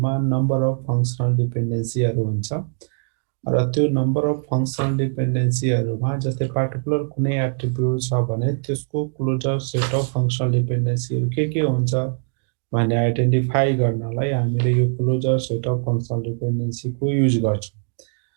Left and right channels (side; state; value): left; silent; digital silence